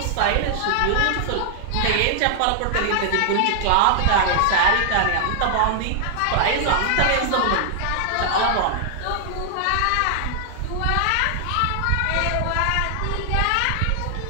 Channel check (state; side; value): different; both; correlation -0.01